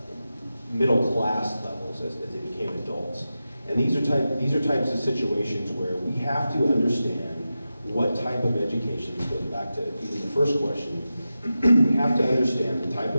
middle class levels as they became adults. And these are types of situations where we have to understand what type of education, this goes back to even the first question, we have to understand the type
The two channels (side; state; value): both; inverted; correlation -0.92